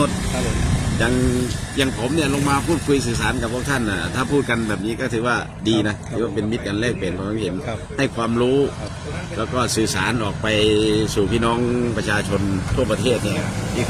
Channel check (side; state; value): both; identical; correlation 1.00